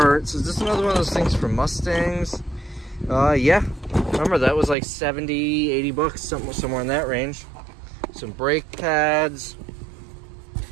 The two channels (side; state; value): left; drops out; at 4.8 s